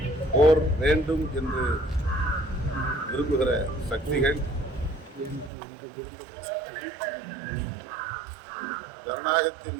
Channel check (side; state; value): left; drops out; at 5.5 s